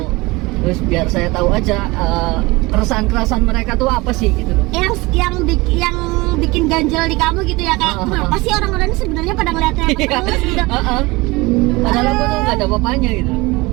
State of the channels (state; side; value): quieter; left; 22.9 dB